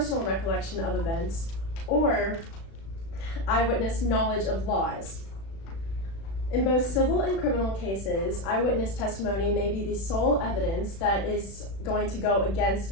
recollection of events, or eyewitness knowledge of laws. In both civil and criminal cases, eyewitness testimony may be the sole evidence that is going to go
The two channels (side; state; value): right; late; 36 ms